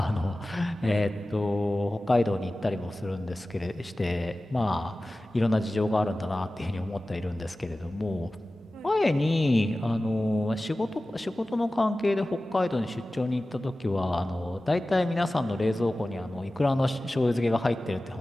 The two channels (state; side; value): normal; both; correlation 0.96